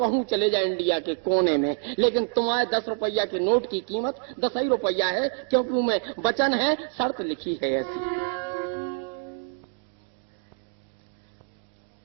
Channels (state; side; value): silent; left; 60 dB below the other